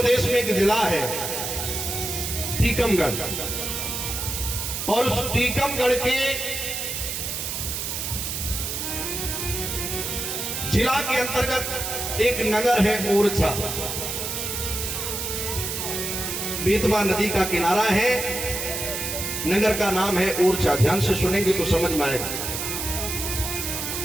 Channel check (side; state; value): right; noise; hiss, 3 dB below the sound